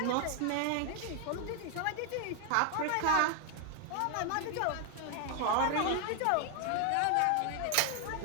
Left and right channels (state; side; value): different; both; correlation 0.00